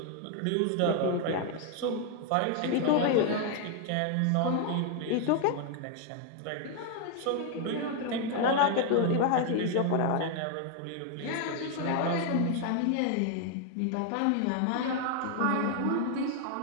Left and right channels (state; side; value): different; both; correlation 0.00